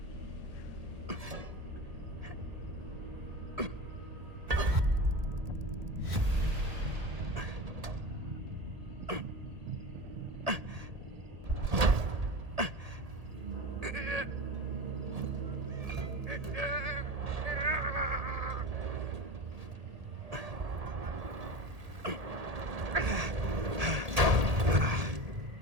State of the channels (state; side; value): late; left; 1.8 ms